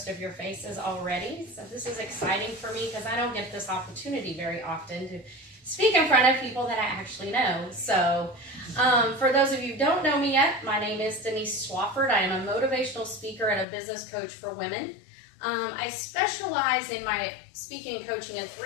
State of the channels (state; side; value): drops out; right; at 13.7 s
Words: of your faces already. So this is exciting for me because I don't get this opportunity very often to speak in front of people that I actually know. So for those of you who don't know me yet, my name is Denise Swafford. I am a motivational speaker and a business coach for women. I specialize in my speaking and coaching in